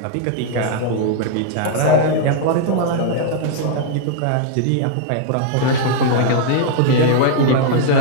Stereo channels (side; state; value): both; different; correlation -0.01